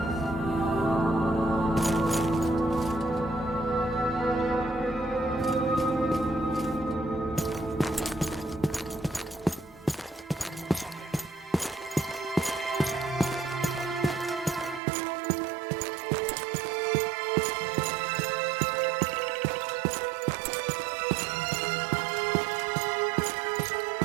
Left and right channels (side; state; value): left; drops out; at 14.8 s